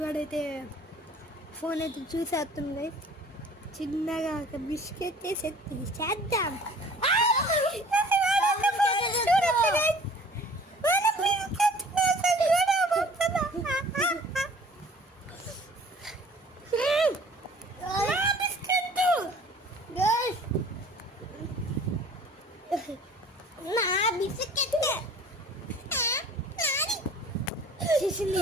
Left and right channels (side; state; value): both; normal; correlation 0.49